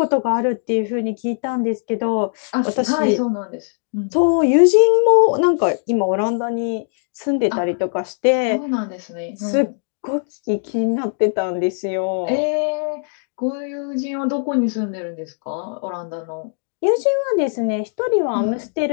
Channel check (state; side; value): silent; right; digital silence